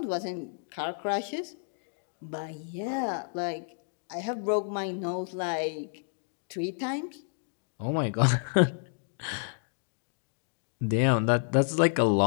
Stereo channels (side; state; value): right; silent; digital silence